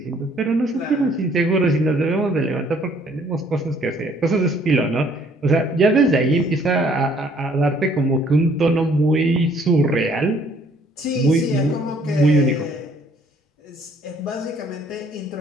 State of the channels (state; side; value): normal; both; correlation 0.61